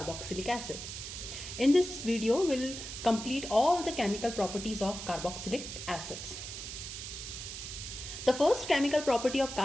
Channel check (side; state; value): right; noise; hiss, 8 dB below the sound